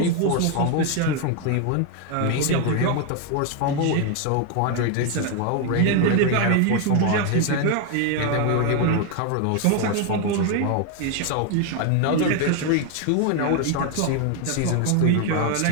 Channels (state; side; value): different; both; correlation 0.01